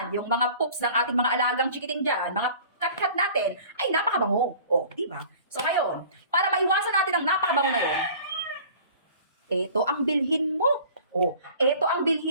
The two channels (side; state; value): both; inverted; correlation -0.46